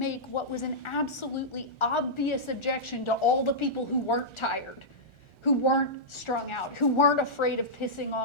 what was an absolutely obvious objection to all the people who weren't tired, who weren't strung out, who weren't afraid of pissing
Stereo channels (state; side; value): late; right; 1.4 ms